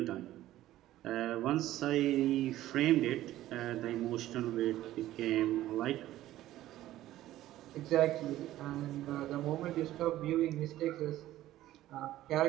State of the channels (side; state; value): left; quieter; 14.5 dB